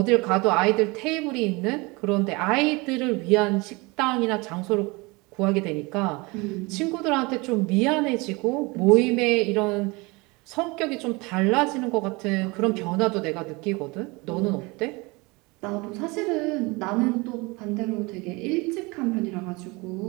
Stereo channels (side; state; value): left; quieter; 25.6 dB